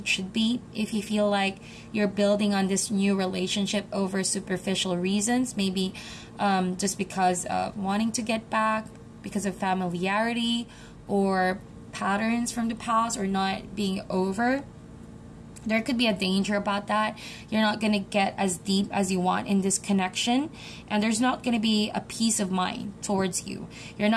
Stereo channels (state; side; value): identical; both; correlation 1.00